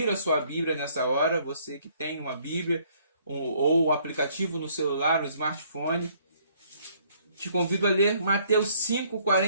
a sua Bíblia nessa hora, você que tem uma Bíblia ou um aplicativo no celular, no smartphone. Te convido a ler Mateus 5,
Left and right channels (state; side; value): inverted; both; correlation -0.63